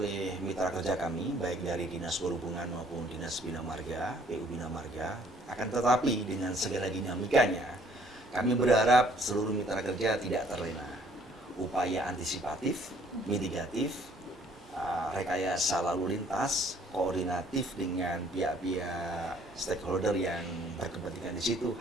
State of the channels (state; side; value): normal; both; correlation 0.60